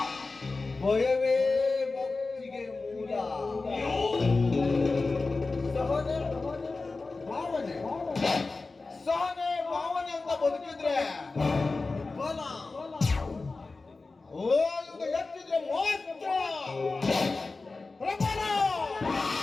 ಭಯವೇ ಭಕ್ತಿಗೆ ಮೂಲ. ಸಹನೆ ಭಾವನೆ ಸಹನೆ ಭಾವನೆ ಅಂತ ಬದುಕಿದ್ರೆ ಬಲ, ಓದುಗ ಎತ್ತಿದ್ರೆ ಮಾತ್ರ ಪ್ರಬಲ.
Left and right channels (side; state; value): right; quieter; 3.7 dB